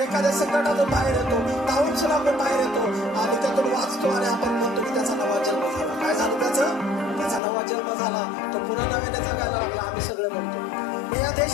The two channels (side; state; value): right; drops out; at 7.4 s